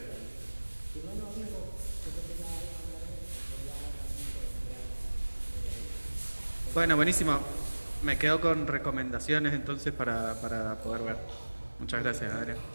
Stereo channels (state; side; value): inverted; both; correlation -1.00